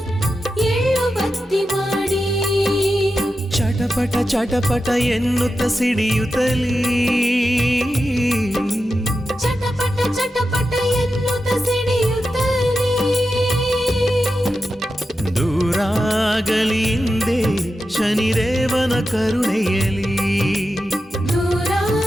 ಎಳ್ಳು ಬತ್ತಿ ಮಾಡಿ. ಚಟಪಟ ಚಟಪಟ ಎನ್ನುತ್ತ ಸಿಡಿಯುತ್ತಲೀ ಚಟಪಟ ಚಟಪಟ ಎನ್ನುತ್ತ ಸಿಡಿಯುತ್ತಲೇ ದೂರಾಗಲಿ ಹಿಂದೆ ಶನಿದೇವನ ಕರುಣೆಯಲಿ.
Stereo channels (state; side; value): normal; both; correlation 0.90